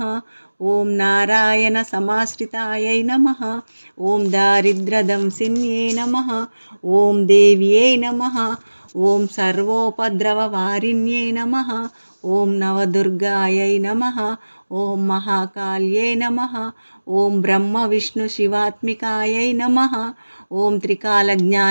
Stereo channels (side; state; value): both; inverted; correlation -1.00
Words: ఓం నారాయణ సమాశ్రితాయై నమః. ఓం దారిద్ర్యదంసిన్యే నమః. ఓం దేవ్యై నమః. ఓం సర్వోపద్రవవారిణ్యై నమః. ఓం నవదుర్గాయై నమః. ఓం మహాకాళ్యై నమః. ఓం బ్రహ్మ విష్ణు శివాత్మికాయై నమః. ఓం